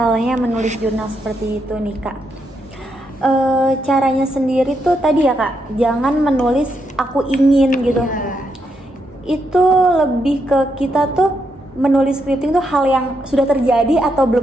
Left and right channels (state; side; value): normal; both; correlation 0.80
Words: menulis jurnal seperti itu nih Kak, caranya sendiri tuh tadi ya Kak, jangan menulis aku ingin gitu. Ya. Itu lebih ke kita tuh menulis scripting tuh hal yang sudah terjadi atau